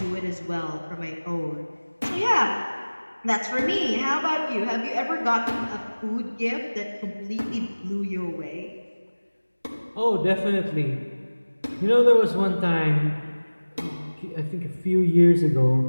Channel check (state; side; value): inverted; both; correlation -1.00